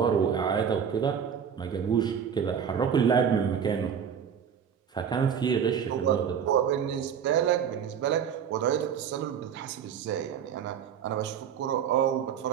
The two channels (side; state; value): left; quieter; 7.8 dB